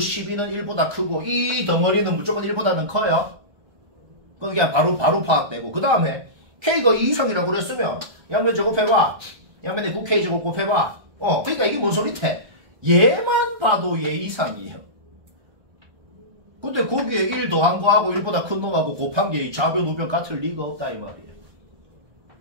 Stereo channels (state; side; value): late; left; 1.3 ms